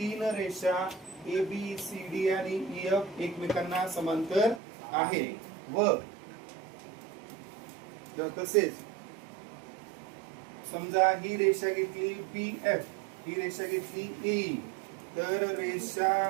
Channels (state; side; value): drops out; left; at 4.6 s